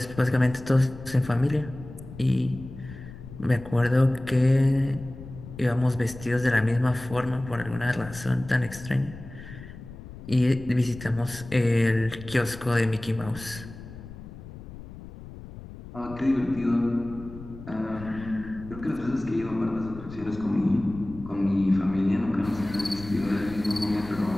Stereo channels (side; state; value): left; noise; rumble, 14 dB below the sound